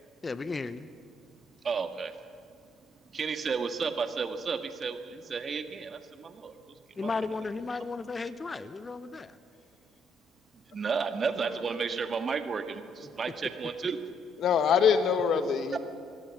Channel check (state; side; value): normal; both; correlation 0.71